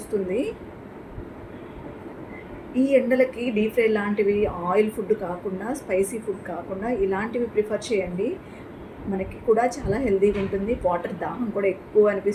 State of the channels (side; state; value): both; identical; correlation 1.00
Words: ఈ ఎండలకి డీప్ ఫ్రై లాంటివి, ఆయిల్ ఫుడ్ కాకుండా, స్పైసీ ఫుడ్ కాకుండా ఇలాంటివి ప్రిఫర్ చేయండి. మనకి కూడా చాలా హెల్తీగా ఉంటుంది. వాటర్ దాహం కూడా ఎక్కువ